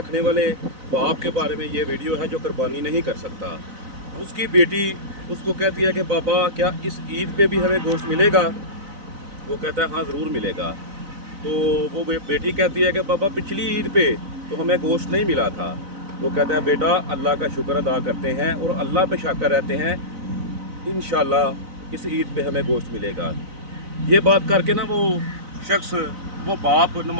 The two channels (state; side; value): late; left; 4.0 ms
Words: वाले बाप के बारे में ये वीडियो है जो कुर्बानी नहीं कर सकता। उसकी बेटी उसको कहती है कि बाबा क्या इस ईद पे भी हमें गोश्त मिलेगा? वो कहता है हाँ ज़रूर मिलेगा। तो वो बेटी कहती है कि बाबा पिछली ईद पे तो हमें गोश्त नहीं मिला था। वो कहता है बेटा अल्लाह का शुक्र अदा करते हैं और अल्लाह पे शाकर रहते हैं, इंशाल्लाह इस ईद पे हमें गोश्त मिलेगा। ये बात करके ना वो शख्स, वो बाप